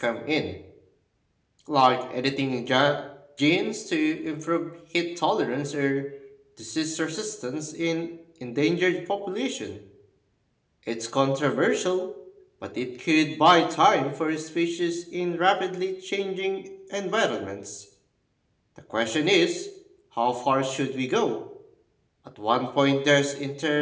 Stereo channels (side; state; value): both; identical; correlation 1.00